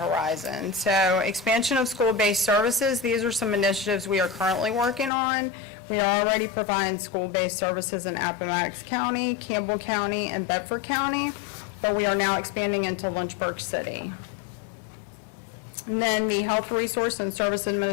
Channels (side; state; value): right; drops out; at 5.1 s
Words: So expansion of school-based services. These are some initiatives we are currently working on. We are already providing school-based services in Appomattox County, Campbell County, and Bedford County, but we are now expanding into Lynchburg City. And then the Health Resource and Service